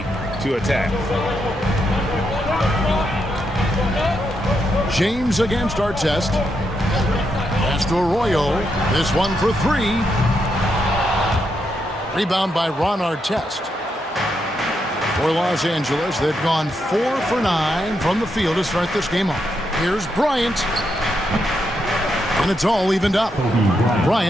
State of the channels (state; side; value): normal; both; correlation 0.81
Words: to attack. James against Artest. Pass to Arroyo. This one for 3. Rebound by Ron Artest. For Los Angeles, they've gone 4 for 9 from the field to start this game off. Here's Bryant. And it's all evened up.